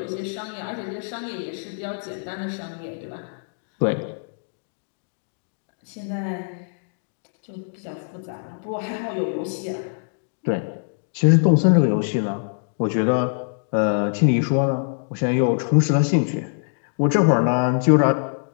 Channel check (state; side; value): silent; right; digital silence